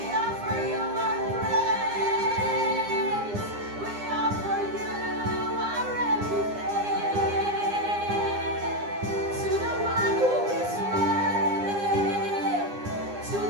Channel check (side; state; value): left; late; 9.8 ms